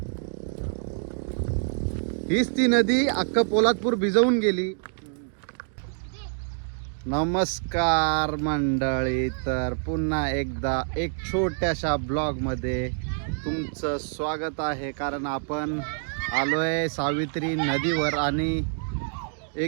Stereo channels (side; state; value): left; silent; digital silence